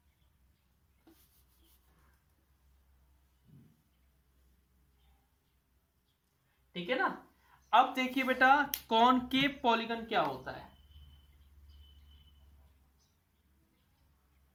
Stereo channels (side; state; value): both; identical; correlation 1.00